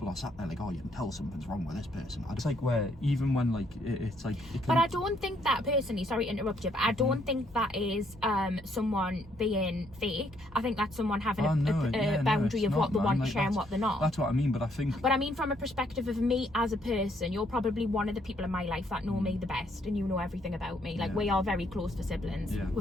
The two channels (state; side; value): normal; both; correlation 0.70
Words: are sat there like, oh, you can tell something's wrong with this person. It's like where even when like it's like. But I don't think that personally. Sorry to interrupt you, but I don't think that is someone being fake. I think that's someone having a boundary of what they want to share and what they're not. That's what I mean. But I think. But I mean, from a perspective of me as a person, you're probably one of the people in my life that know me the best, and you know everything about me. Like we are very close for siblings. Yeah.